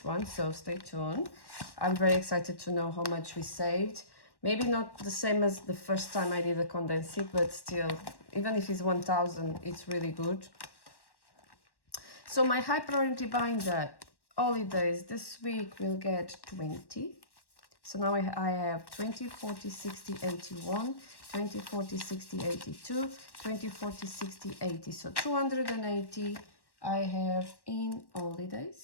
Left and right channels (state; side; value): late; right; 1.1 ms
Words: one, so stay tuned. I'm very excited to know how much we saved. Maybe not the same as the first time I did the condensing, but still, even if it's 1,000, it's really good. So my high priority binder holidays this week will get 20. So now I have 20, 40, 60, 81, 20, 40, 60, 82, 20, 40, 60, 80. So 280 I have in